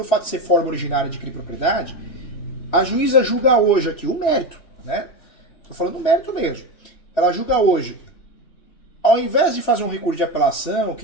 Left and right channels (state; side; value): late; right; 3.0 ms